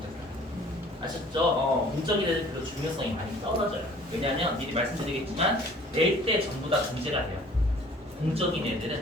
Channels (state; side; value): normal; both; correlation 0.52